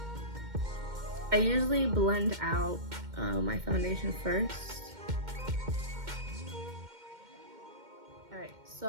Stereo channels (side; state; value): left; late; 2.1 ms